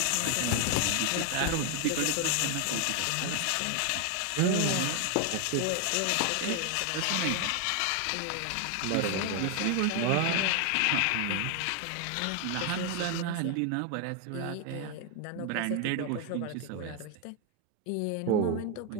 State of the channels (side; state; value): both; different; correlation 0.01